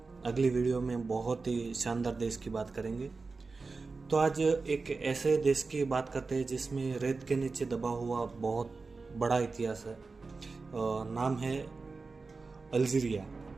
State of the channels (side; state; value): left; quieter; 4.1 dB